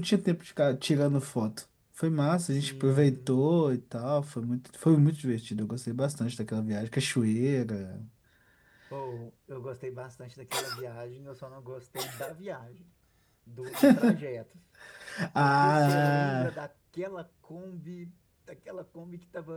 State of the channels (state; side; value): identical; both; correlation 1.00